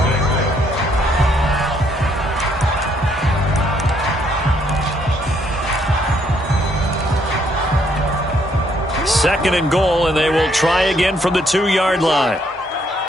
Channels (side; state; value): both; normal; correlation 0.70